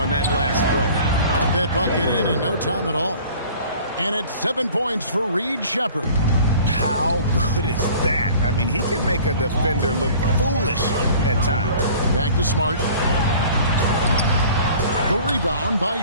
on that last play. That bucket in no time at all. And it's 7 points for Reed Sheppard. How good is that? I mean, he can make a defender look foolish at times. Back to Smart. The rebound by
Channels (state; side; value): inverted; both; correlation -0.47